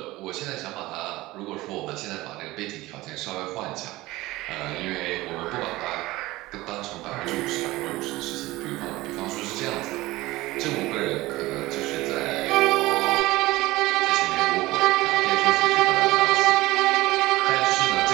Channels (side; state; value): left; quieter; 18.9 dB